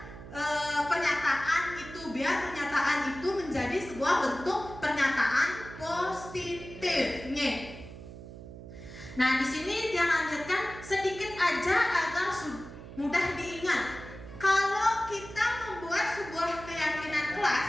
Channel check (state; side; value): noise; right; hum, 14 dB below the sound